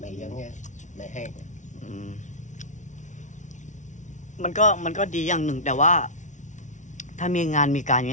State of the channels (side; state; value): right; late; 0.36 ms